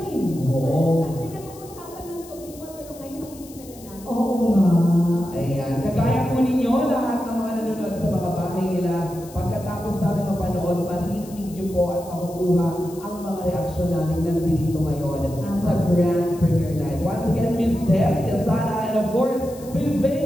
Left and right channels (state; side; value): noise; left; hiss, 20 dB below the sound